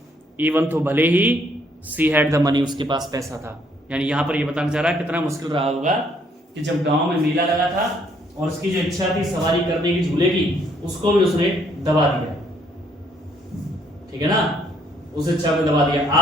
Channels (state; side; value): normal; both; correlation 0.67